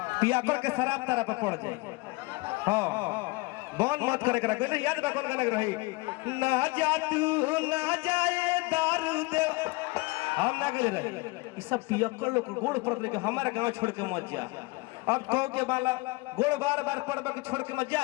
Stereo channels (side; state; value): right; quieter; 24.6 dB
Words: पिया कर के शराब तारा पे पड़ जाए हाँ बंद मत करे करा कोई याद बा कौन गाना रही ना जा तू ना जाए दारू दे हम ना गए रहे ये सब पियक्कर लोग गोड़ पड़ रहे हमारा गांव छोड़ के मत जा। अब कहो के वाला गोड़ बार बार पड़बा के छोड़ के मत